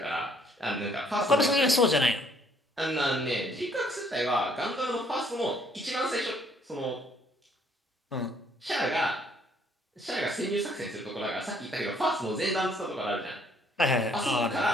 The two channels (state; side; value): normal; both; correlation 0.64